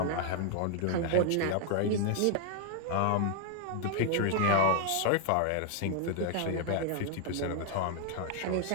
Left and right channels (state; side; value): different; both; correlation 0.00